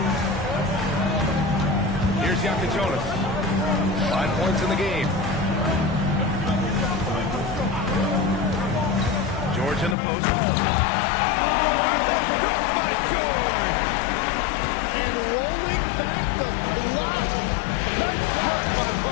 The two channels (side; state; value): right; drops out; at 10.0 s